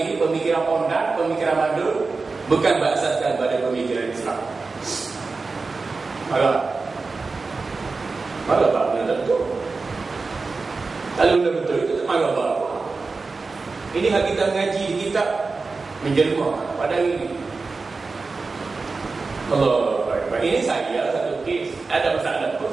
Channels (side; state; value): left; quieter; 4.1 dB